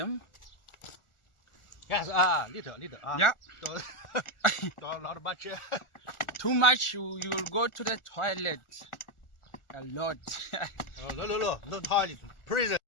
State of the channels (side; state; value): right; late; 1.4 ms